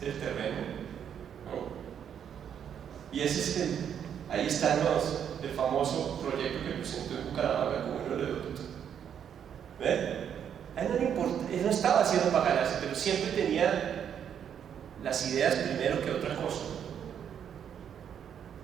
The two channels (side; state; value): left; quieter; 8.6 dB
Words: es el terreno, ¿no? Y ese es ahí están el famoso proyecto que presentó en Bucaramanga como un oleoducto. ¿Ven? A él no le importa, él no estaba haciendo para ganarse, pero siempre tenía las ideas primero que otra cosa.